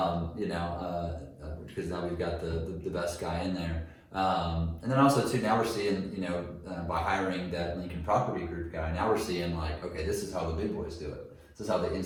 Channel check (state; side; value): identical; both; correlation 1.00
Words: now we've got the best guy in there. And then also too, now we're seeing, by hiring that Lincoln Property Group guy, now we're seeing like, okay, this is how the big boys do it. This is how the